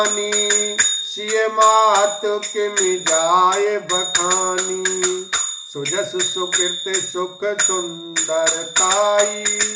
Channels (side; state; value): both; identical; correlation 1.00